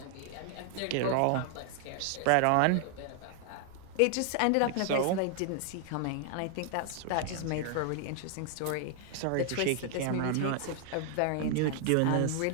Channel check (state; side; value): different; both; correlation 0.00